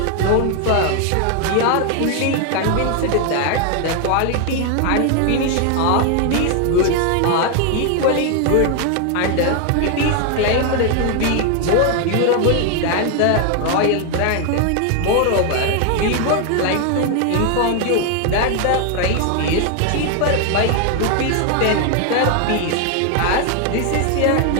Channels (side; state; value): both; different; correlation 0.01